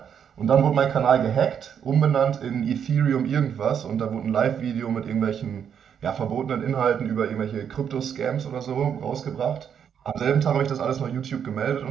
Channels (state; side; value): quieter; left; 8.1 dB